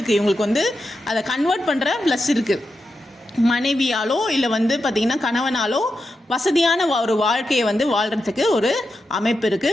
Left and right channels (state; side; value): normal; both; correlation 0.88